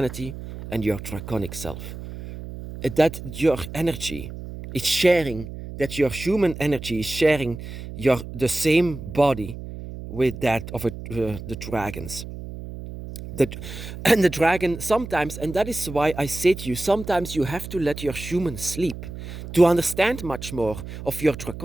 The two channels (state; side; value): noise; right; hum, 10 dB below the sound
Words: and your draconic self. That your energy is sharing, that your human energy is sharing the same body with that of the dragons. And the dragon sometimes, and that is why I say to you, sometimes you have to let your human sleep to understand much more of your